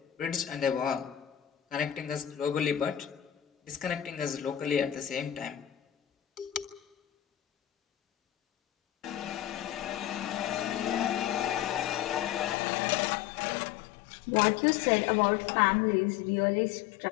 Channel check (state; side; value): drops out; right; at 12.6 s